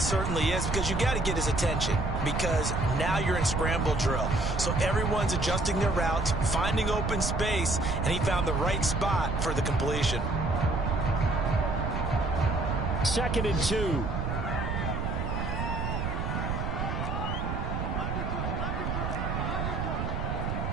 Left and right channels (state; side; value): noise; right; rumble, 2 dB below the sound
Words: certainly is, because you got to get his attention, because now you're in scramble drill. So everyone's adjusting their routes, finding open space, and he found the right spot for the completion. 2nd and 2.